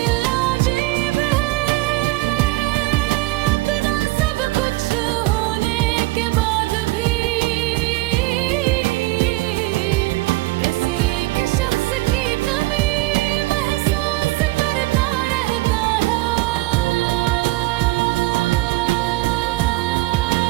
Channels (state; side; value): quieter; left; 19.9 dB